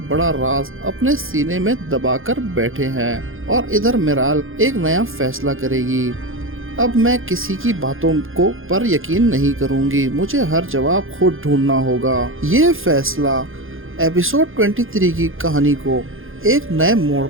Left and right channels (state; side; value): late; left; 0.59 ms